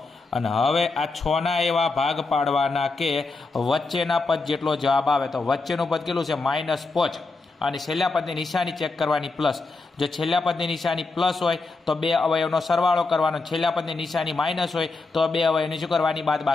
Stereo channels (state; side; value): quieter; right; 3.7 dB